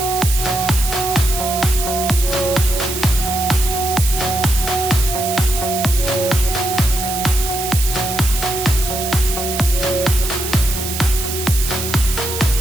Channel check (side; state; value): right; noise; hiss, 5 dB below the sound